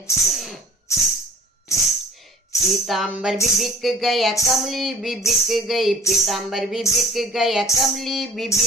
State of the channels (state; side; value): normal; both; correlation 0.44